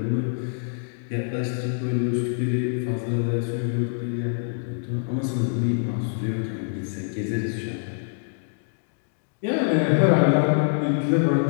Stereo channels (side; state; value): right; silent; digital silence